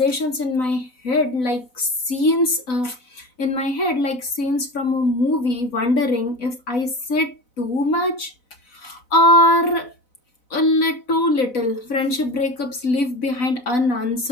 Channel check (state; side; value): late; right; 4.0 ms